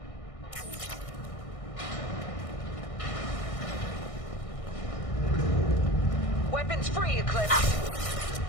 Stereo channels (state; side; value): late; right; 1.6 ms